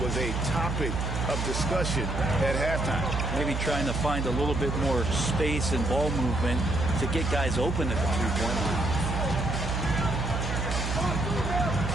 was a topic of discussion at halftime. Maybe trying to find a little bit more space and ball movement to get guys open at the three-point line.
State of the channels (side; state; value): right; noise; hum, 2 dB below the sound